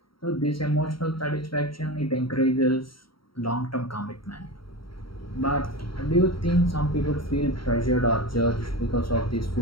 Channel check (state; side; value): late; right; 0.74 ms